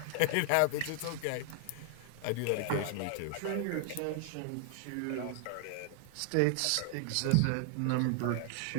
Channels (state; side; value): different; both; correlation 0.00